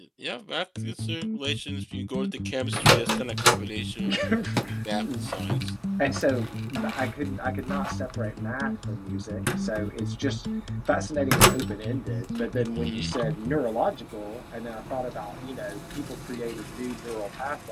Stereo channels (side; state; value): both; identical; correlation 1.00